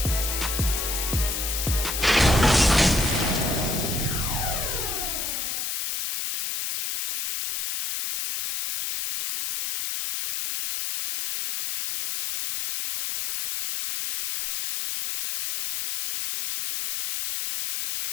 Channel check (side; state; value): left; noise; hiss, 3 dB below the sound